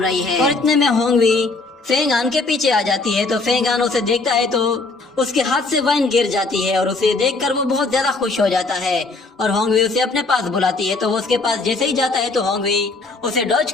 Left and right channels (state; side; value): quieter; right; 3.6 dB